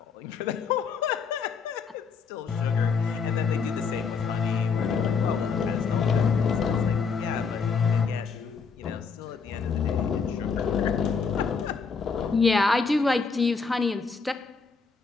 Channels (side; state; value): right; quieter; 5.3 dB